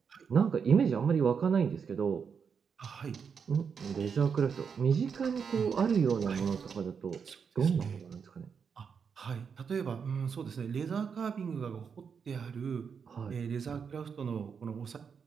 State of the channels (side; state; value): left; quieter; 6.4 dB